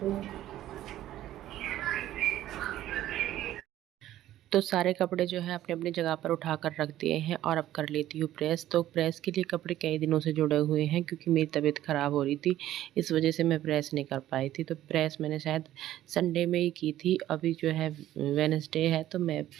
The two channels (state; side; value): quieter; left; 13.4 dB